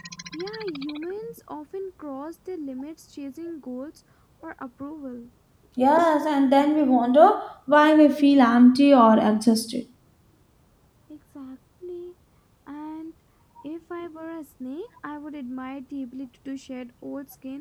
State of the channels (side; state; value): both; identical; correlation 1.00